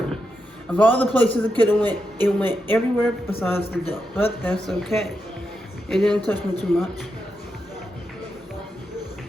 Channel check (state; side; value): normal; both; correlation 0.85